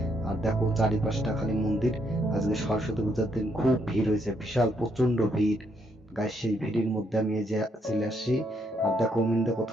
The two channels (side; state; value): both; normal; correlation 0.74